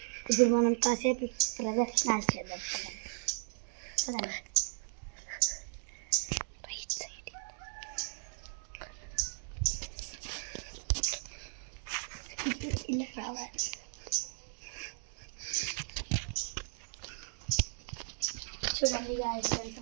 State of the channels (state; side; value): silent; left; 54 dB below the other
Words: ఇప్పుడు మనం కాసేపు ప్రదర్శనలు చేద్దాం. రైట్ సైడ్ ఇలా రావాలి. చూడండి గాయ్స్, ఎంత